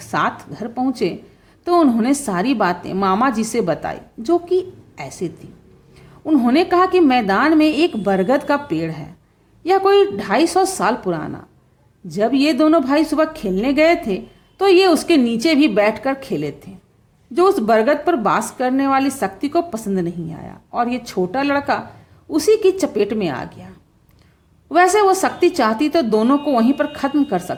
घर पहुंचे तो उन्होंने सारी बातें मामा जी से बताई, जो कि ऐसी थी। उन्होंने कहा कि मैदान में एक बरगद का पेड़ है, यह कोई 250 साल पुराना। जब ये दोनों भाई सुबह खेलने गए थे तो ये उसके नीचे भी बैठकर खेले थे, जो उस बरगद पर वास करने वाली शक्ति को पसंद नहीं आया और ये छोटा लड़का उसी की चपेट में आ गया। वैसे वो शक्ति चाहती तो दोनों को वहीं पर खत्म कर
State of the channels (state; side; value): identical; both; correlation 1.00